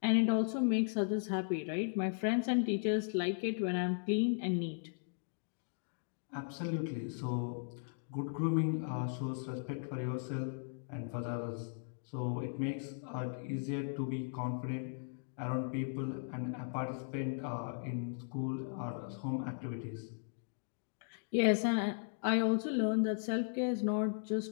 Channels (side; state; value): right; silent; digital silence